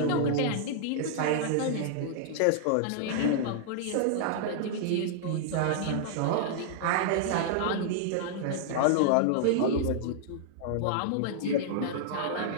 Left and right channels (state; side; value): different; both; correlation -0.01